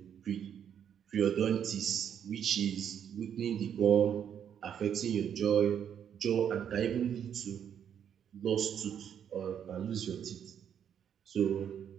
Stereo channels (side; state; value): left; quieter; 8.7 dB